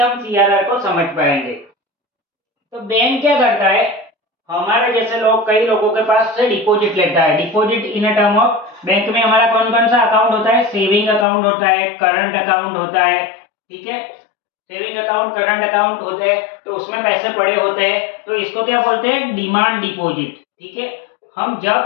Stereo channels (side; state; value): right; drops out; at 11.2 s